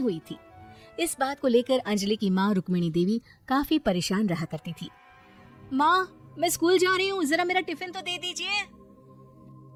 हुई थी। इस बात को लेकर अंजलि की माँ रुक्मिणी देवी काफी परेशान रहा करती थी। माँ, मैं स्कूल जा रही हूँ, जरा मेरा टिफिन तो दे दीजिए।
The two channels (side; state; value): both; identical; correlation 1.00